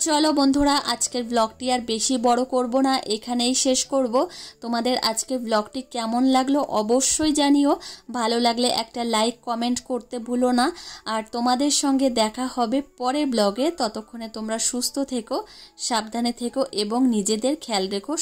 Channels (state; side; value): identical; both; correlation 1.00